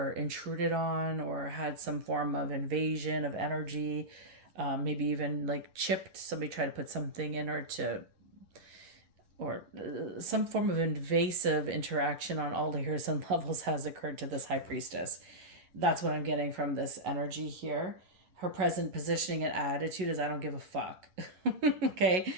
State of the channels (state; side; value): late; left; 11 ms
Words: intruded on or had some form of invasion of energy, maybe even like chipped. Somebody tried to put something in her or some form of invasive interaction on all layers and levels has occurred to this High Priestess. That's what I'm getting from this energy here. Her present positioning and attitude is, I don't give a fuck. Okay?